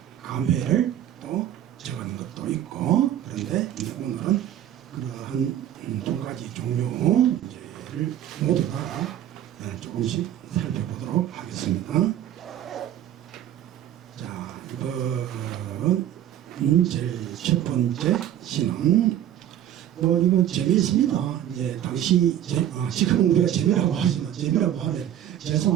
감회를 또 적은 것도 있고 그런데 오늘은 그러한 두 가지 종류를 모두 다 조금씩 살펴보도록 하겠습니다. 자, 이번 제일 첫 번째 시는 이건 재미있습니다. 이제 당시 지금 우리가 재미라고 하지만 재미라고 하면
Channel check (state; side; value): quieter; left; 11.2 dB